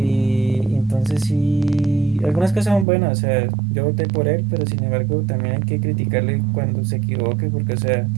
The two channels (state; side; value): drops out; left; at 2.9 s